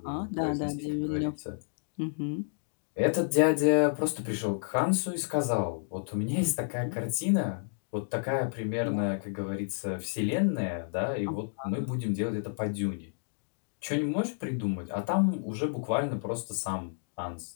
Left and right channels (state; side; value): silent; right; digital silence